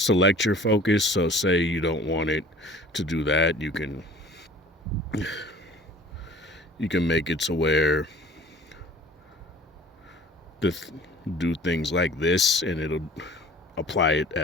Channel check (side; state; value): both; normal; correlation 0.47